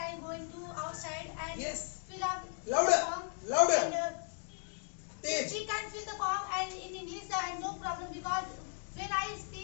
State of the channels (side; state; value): right; silent; 54 dB below the other